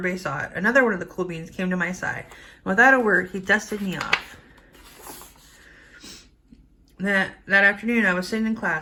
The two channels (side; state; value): both; identical; correlation 1.00